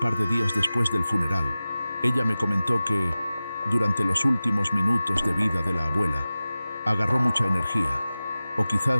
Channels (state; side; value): inverted; both; correlation -0.96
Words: de días después del funeral. Ella me comentó que, durante los últimos minutos de vida de la abuela, agarró mucha energía o